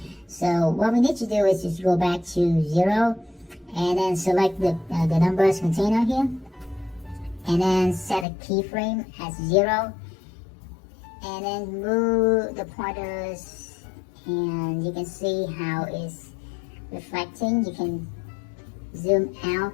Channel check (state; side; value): drops out; right; at 8.2 s